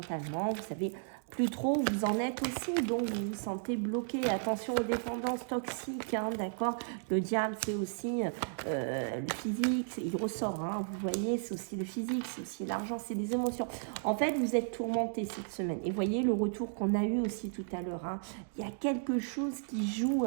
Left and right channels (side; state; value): left; silent; digital silence